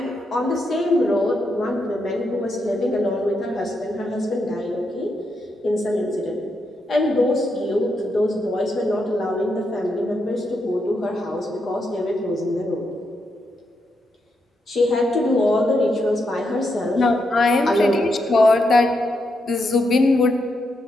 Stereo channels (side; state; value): both; normal; correlation 0.82